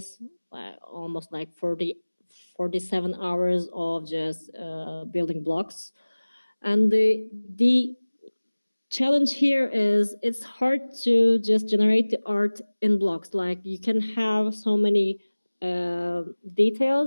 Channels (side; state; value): both; inverted; correlation -1.00